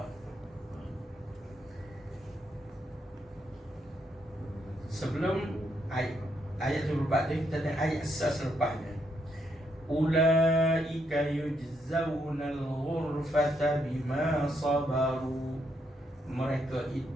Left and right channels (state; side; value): normal; both; correlation 0.77